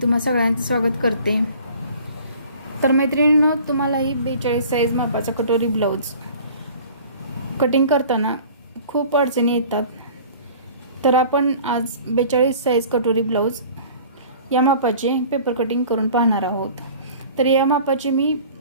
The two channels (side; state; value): both; inverted; correlation -0.46